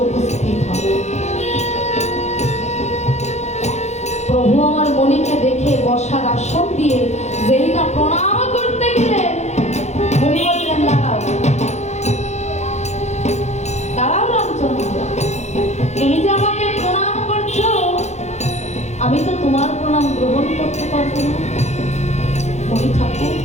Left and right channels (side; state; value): right; late; 0.33 ms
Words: উপস্থিত হন। প্রভু আমার মণিকে দেখে বসার আসন দিয়ে যেই না প্রণাম করতে গেলেন, মণি বললেন দাঁড়াও দাঁড়াও রামচন্দ্র, তুমি যে আমাকে প্রণাম করছো, আমি তো তোমার প্রণাম গ্রহণ করতে পারবো না। মণি ঠাকুর,